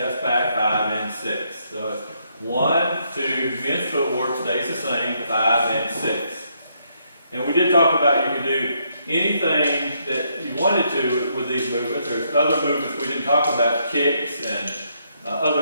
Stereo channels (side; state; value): both; inverted; correlation -0.74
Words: back, 5 and 6. So it's 1, 2, men's footwork stays the same, 5 and 6. And we did talk about you can do anything that you wanted to with these movements. There's other movements we didn't talk about, kicks and